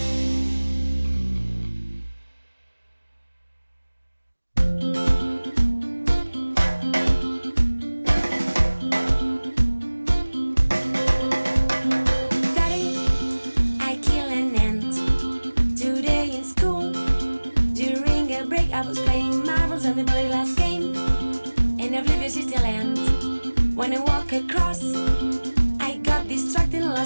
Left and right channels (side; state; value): both; inverted; correlation -1.00